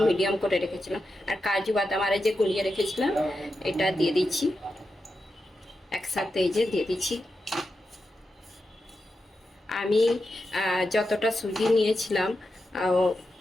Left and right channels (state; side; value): normal; both; correlation 0.88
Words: মিডিয়াম করে রেখেছিলাম, আর কাজু বাদাম আর যে গুলিয়ে রেখেছিলাম এটা দিয়ে দিচ্ছি, একসাথে এই যে দিয়ে দিচ্ছি। আমি যতটা সুজি নিয়েছিলাম